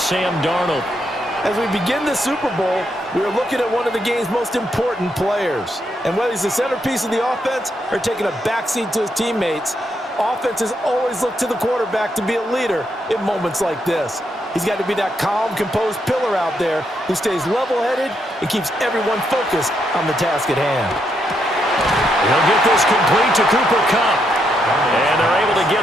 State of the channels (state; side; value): normal; both; correlation 0.79